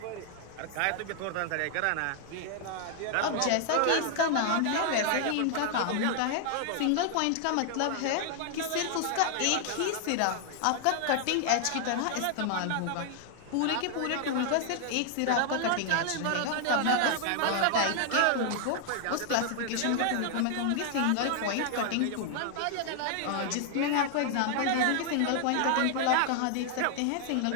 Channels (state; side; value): different; both; correlation 0.00